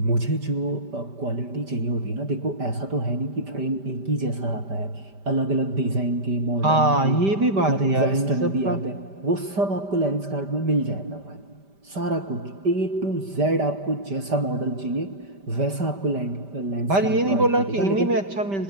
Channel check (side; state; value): left; late; 5.1 ms